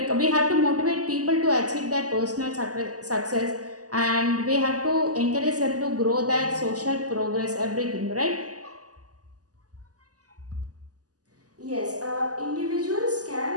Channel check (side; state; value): left; late; 0.67 ms